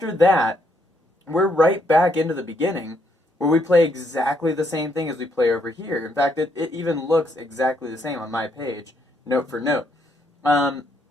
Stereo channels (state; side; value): normal; both; correlation 0.74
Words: that, we're right back into the beginning, where we play exactly the same thing as we play over here. In fact, it even looks exactly the same on my page, note for note. And